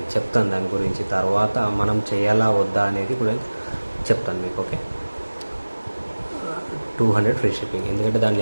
చెప్తాను. దాని గురించి తర్వాత మనం చేయాలా వద్దా అనేది కూడా చెప్తాను మీకు. Okay, 200 free shipping. ఎందుకంటే దాంట్లో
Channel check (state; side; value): inverted; both; correlation -1.00